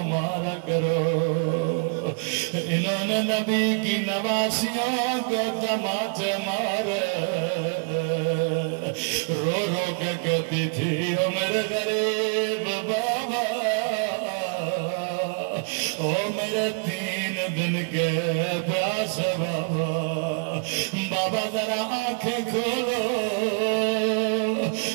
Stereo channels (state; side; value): quieter; left; 36.0 dB